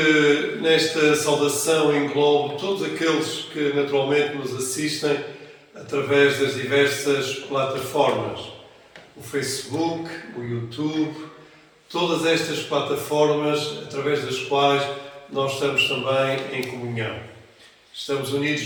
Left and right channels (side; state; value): both; identical; correlation 1.00